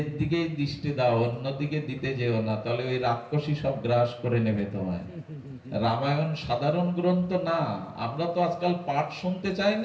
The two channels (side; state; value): both; identical; correlation 1.00